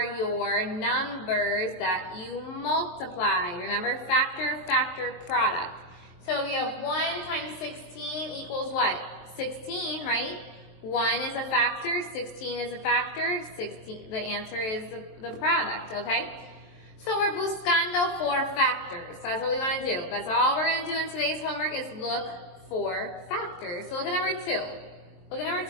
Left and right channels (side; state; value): right; late; 23 ms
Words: your numbers that you multiply. Remember, factor, product. So if you have 1 times 16 equals what? 16, right? 1 is a factor, 16 is a factor, 16, the answer is the product, okay? So we're buscando for factors. That's what we want to do. That's all we're going to do in today's homework is look for factors. So look at number 2. Look at number